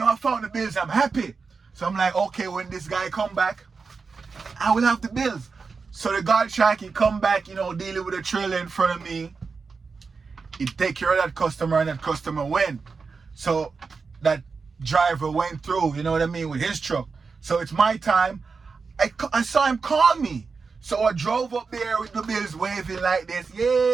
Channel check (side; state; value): left; quieter; 4.8 dB